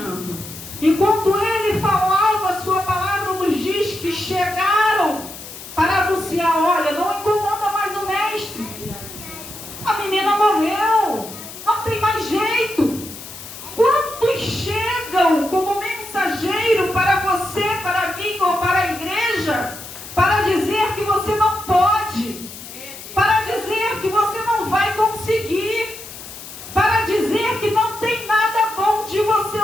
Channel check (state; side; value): noise; left; hiss, 14 dB below the sound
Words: Enquanto ele falava, a sua palavra nos diz que chegaram para anunciar: olha, não incomoda mais o mestre. A menina morreu, não tem mais jeito. Quantos chegam como mensageiro para você, para mim ou para a igreja, para dizer que você não pode, para dizer que você não vai conseguir, para dizer que não tem nada bom de você